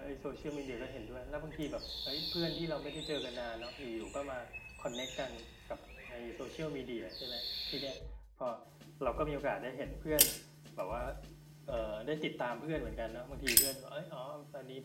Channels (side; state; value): both; identical; correlation 1.00